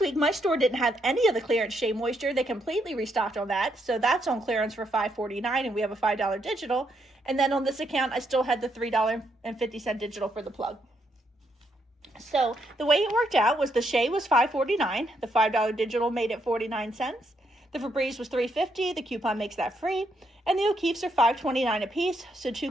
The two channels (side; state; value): both; normal; correlation 0.77